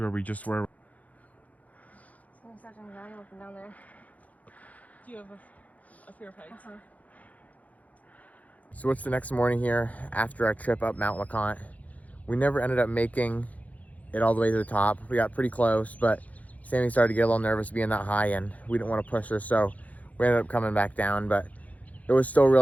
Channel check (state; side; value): late; right; 0.073 ms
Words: we just were. Someone's such anxiety looking down there. Do you have a fear of heights? So what's the next morning here after our trip up Mount LeConte? We never ended up making it all the way to the top. We got pretty close, but Sammy started to get a little nervous being that high and we didn't want to push her, so we ended up coming back down, but it was still